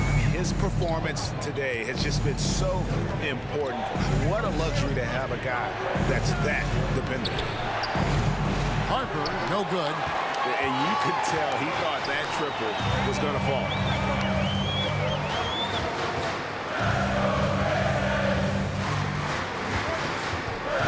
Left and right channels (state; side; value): identical; both; correlation 1.00